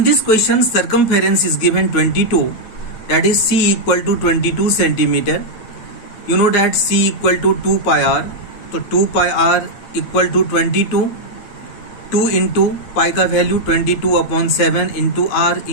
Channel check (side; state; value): right; late; 9.2 ms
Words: this question circumference is given 22, that is C equal to 22 centimeter. You know that C equal to 2 pi r. So 2 pi r equal to 22. 2 into pi का value 22/7 into r